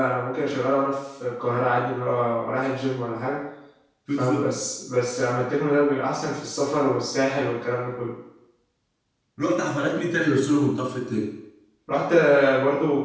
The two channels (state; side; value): identical; both; correlation 1.00